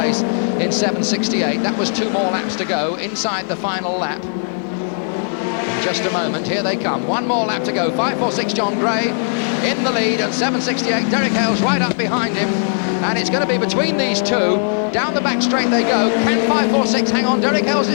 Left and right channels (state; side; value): silent; right; digital silence